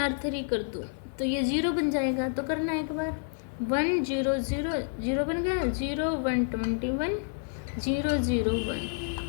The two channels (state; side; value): silent; right; 58 dB below the other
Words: कर दूँ तो ये 0 बन जाएगा। तो करना एक बार 1 0 0 0 बन गया, 0 1 21 0 0 1